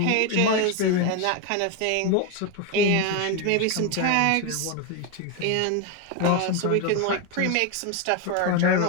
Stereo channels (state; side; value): different; both; correlation 0.02